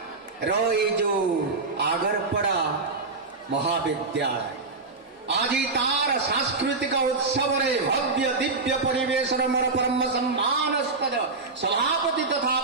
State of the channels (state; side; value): quieter; left; 3.8 dB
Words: रो ये जो आगरपड़ा महाविद्यालय आज तार सांस्कृतिक उत्सव रे भव्य दिव्य परिवेशन मोर परम सम्मानस्पद सभापति तथा